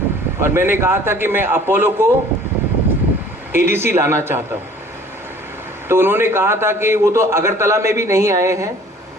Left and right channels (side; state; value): both; normal; correlation 0.51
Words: और मैंने कहा था कि मैं अपोलो को एडीसी लाना चाहता हूं। तो उन्होंने कहा था कि वो तो अगरतला में भी नहीं आए हैं,